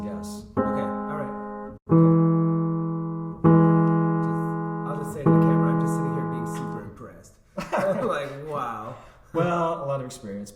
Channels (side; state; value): both; identical; correlation 1.00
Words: Okay, all right. I'll just say to the camera, I'm just sitting here being super impressed. I'm like, wow. Well, a lot of experience.